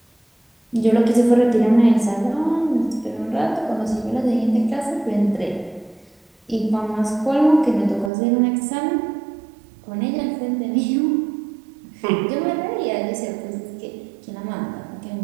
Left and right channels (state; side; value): drops out; left; at 8.1 s